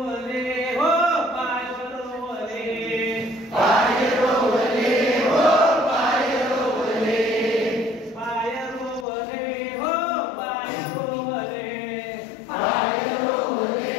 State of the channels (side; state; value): right; drops out; at 9.1 s